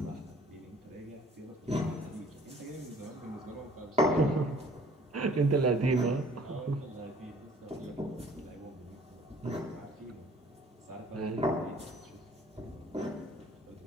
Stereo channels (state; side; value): normal; both; correlation 0.54